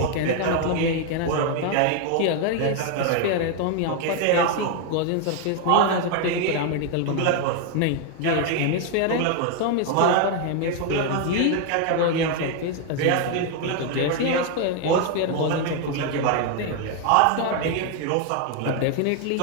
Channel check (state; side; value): different; both; correlation 0.01